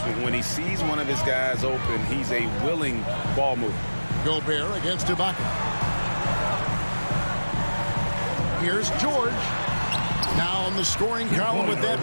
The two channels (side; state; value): both; inverted; correlation -1.00